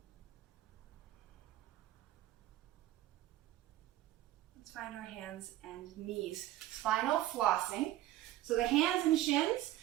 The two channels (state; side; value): quieter; left; 14.6 dB